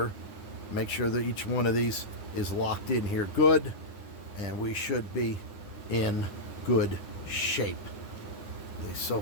Make sure that each one of these is locked in here good, and we should be in good shape. At least so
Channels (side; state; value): right; late; 9.9 ms